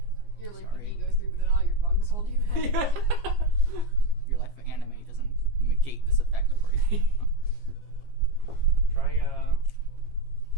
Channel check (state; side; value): late; left; 15 ms